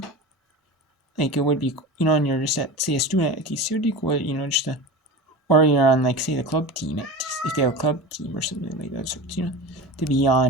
Like, it would be, and you're just a student at TCU, it would be cool, or you're on, say, the club team, if they have a club team or something like that, so, to be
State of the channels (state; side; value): normal; both; correlation 0.29